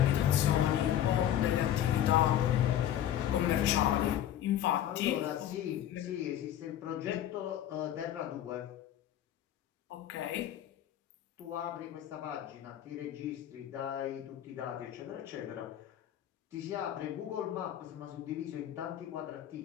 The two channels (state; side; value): quieter; right; 11.3 dB